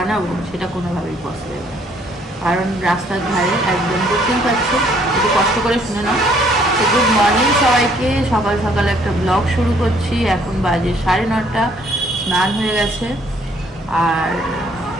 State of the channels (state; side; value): normal; both; correlation 0.64